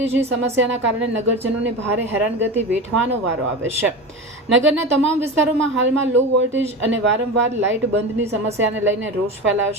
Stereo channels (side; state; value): both; normal; correlation 0.26